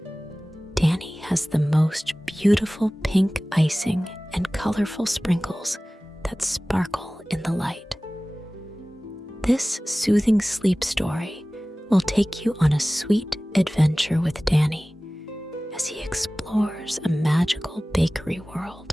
Danny has the most beautiful pink icing and colorful sprinkles that sparkle in the light. This soothing sleep story will take you on a sweet adventure with Danny as he explores a magical bakery world.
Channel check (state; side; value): normal; both; correlation 0.98